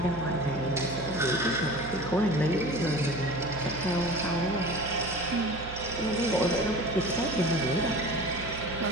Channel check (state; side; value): noise; right; hum, 12 dB below the sound